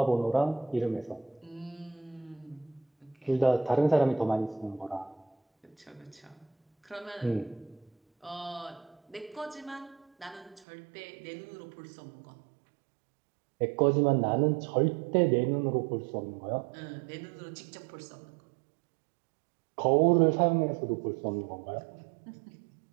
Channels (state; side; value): drops out; left; at 10.6 s